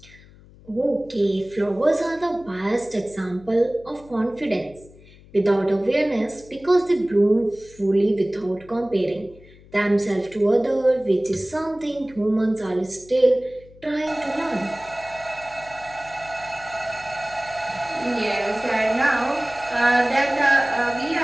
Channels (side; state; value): left; noise; hum, 23 dB below the sound